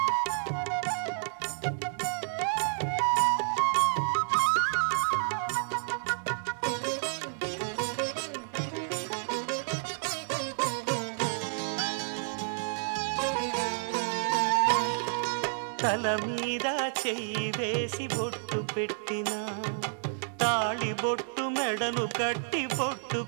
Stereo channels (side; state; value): left; silent; digital silence